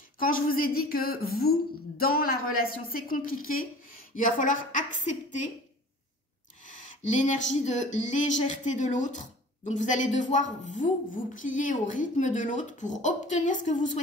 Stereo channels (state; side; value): normal; both; correlation 0.44